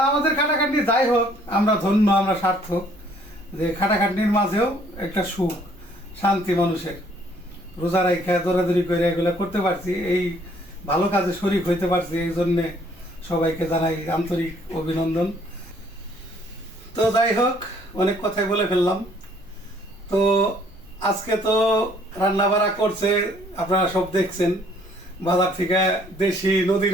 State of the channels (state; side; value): normal; both; correlation 0.61